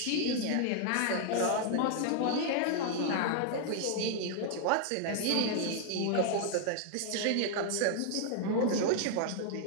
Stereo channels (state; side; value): different; both; correlation 0.00